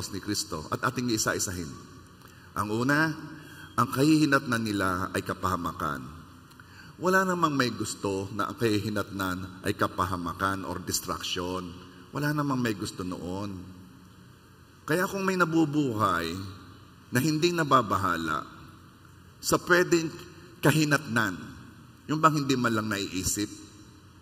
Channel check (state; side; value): identical; both; correlation 1.00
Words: ni Kristo at ating isa-isahin. Ang una, ang kahihinatnan nila ay kapahamakan. Wala namang may gusto na ang kahihinatnan ay kapahamakan or distraction. Wala namang may gusto noon. Kaya kung may nabubuhay na hindi nababahala sa pwedeng kahinatnan, yung bang hindi man lang naiisip,